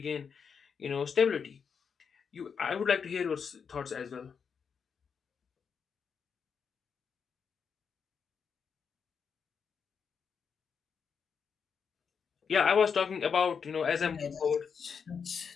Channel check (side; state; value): right; quieter; 6.4 dB